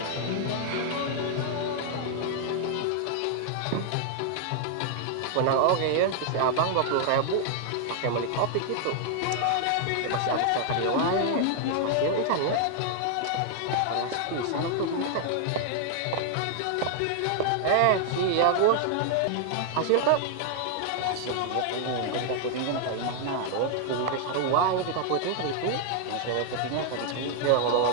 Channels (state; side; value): different; both; correlation 0.00